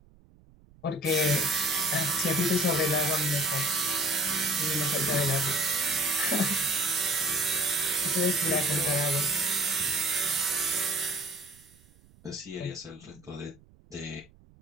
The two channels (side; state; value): right; noise; rumble, 28 dB below the sound